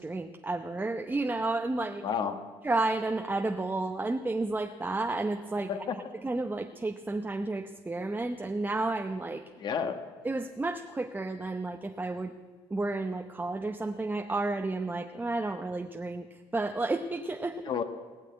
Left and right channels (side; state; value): both; normal; correlation 0.82